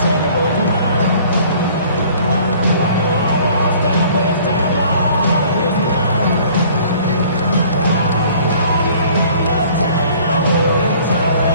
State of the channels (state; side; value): inverted; both; correlation -0.53